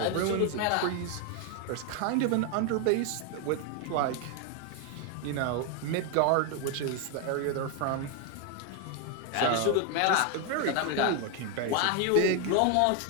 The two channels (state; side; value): different; both; correlation 0.01